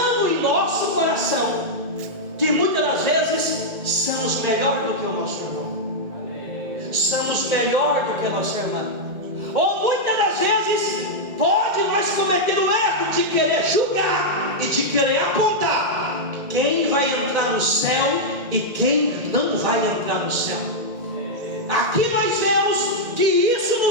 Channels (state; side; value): late; left; 1.8 ms